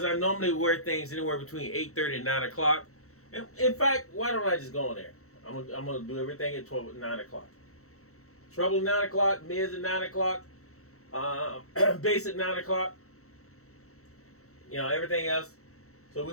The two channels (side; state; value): right; late; 0.64 ms